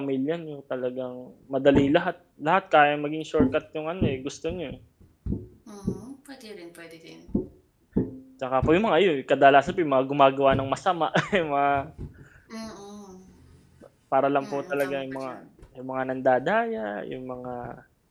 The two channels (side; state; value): both; identical; correlation 1.00